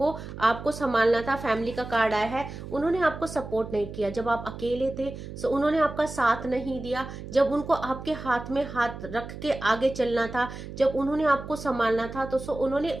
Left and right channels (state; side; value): noise; right; hum, 11 dB below the sound